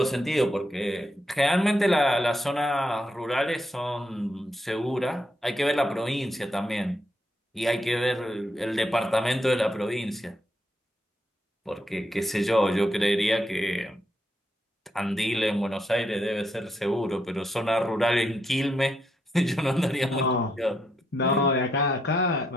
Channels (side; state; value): both; normal; correlation 0.79